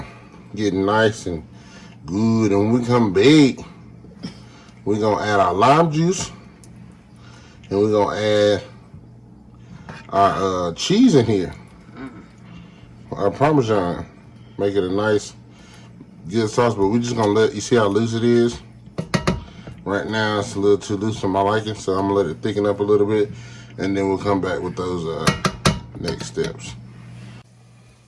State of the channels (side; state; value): both; identical; correlation 1.00